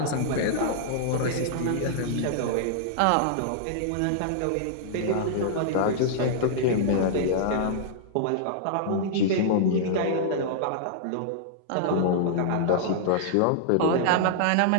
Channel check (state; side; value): different; both; correlation -0.01